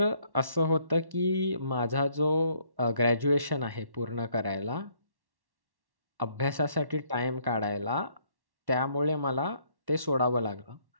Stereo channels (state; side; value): late; left; 1.1 ms